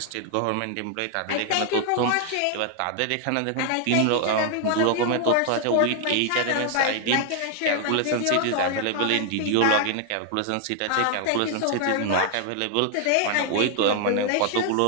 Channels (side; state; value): both; different; correlation 0.00